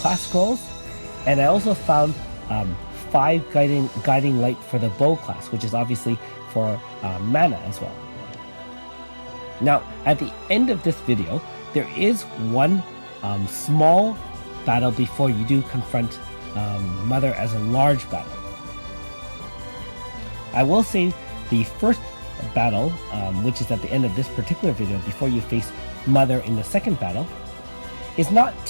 scrolls, and I also found 5 guiding light for the bow class, which is obviously for mana as well. Now, at the end of this video, there is one small battle before you do confront Mother as a large battle. I will say the first battle, which is at the end of this particular video, before you face Mother in the second battle, is not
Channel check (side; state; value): both; inverted; correlation -1.00